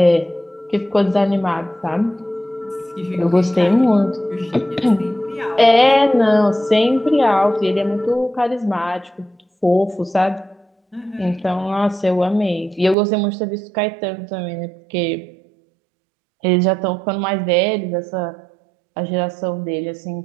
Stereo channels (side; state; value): left; drops out; at 13.0 s